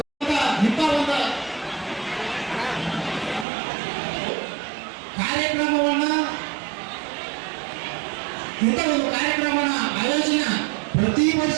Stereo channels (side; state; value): left; drops out; at 3.5 s